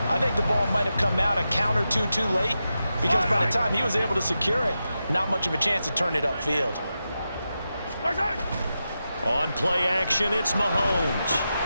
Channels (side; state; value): both; inverted; correlation -0.90